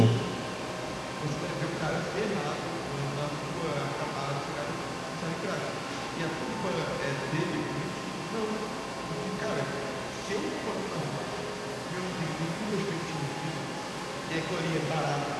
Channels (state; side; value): identical; both; correlation 1.00